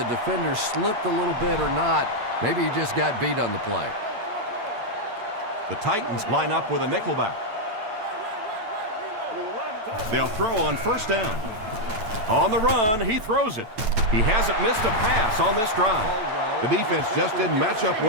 defender slipped a little bit or not. Maybe he just got beat on the play. The Titans line up with a nickelback. They'll throw on 1st down. On the run, he throws it. He hasn't missed a pass on this drive. The defense just didn't match up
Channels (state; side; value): late; left; 9.1 ms